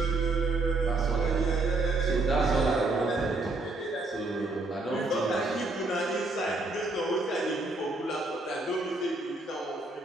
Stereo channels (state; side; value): quieter; left; 3.1 dB